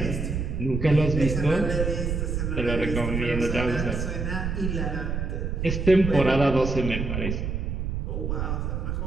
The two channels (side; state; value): right; noise; rumble, 2 dB below the sound